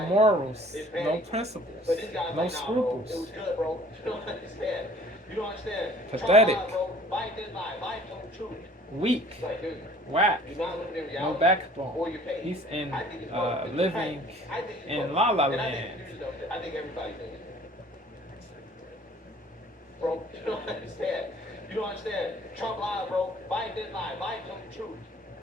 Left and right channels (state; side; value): normal; both; correlation 0.52